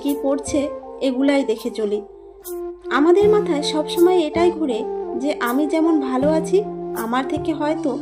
কী পড়ছে, এগুলাই দেখে চলি। আমাদের মাথায় সবসময় এটাই ঘুরে যে আমি যেমন ভালো আছি, আমার থেকে হয়তো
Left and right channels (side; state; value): both; identical; correlation 1.00